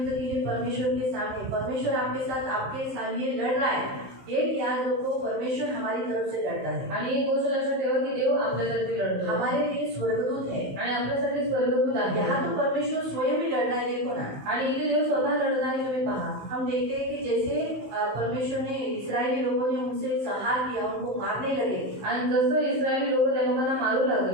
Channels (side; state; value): left; late; 15 ms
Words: के लिए परमेश्वर के सामने, परमेश्वर आपके साथ, आपके साथ ये लड़ रहा है, एक याद रखो, परमेश्वर हमारी तरफ से लड़ता है। आणि एक गोष्ट लक्षात ठेवा की देव आपल्यासाठी लढतो, हमारे लिए स्वर्गदूत है आणि आपल्यासाठी स्वर्गदूत आहे। यहाँ तो परमेश्वर स्वयं ही लड़ रहा है, देखो ना। आणि इथे देव स्वतः लढत आहे, तुम्ही पहा। हम देखते हैं कि जैसे परमेश्वर ने, इस्राएली लोगों ने उनसे संहार किया, उनको मारने लगे, आणि जसं इस्रायली लोक त्या लोकांना मारू